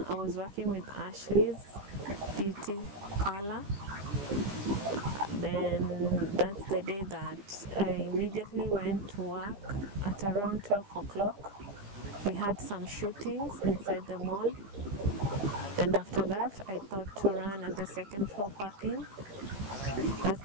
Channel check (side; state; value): left; late; 15 ms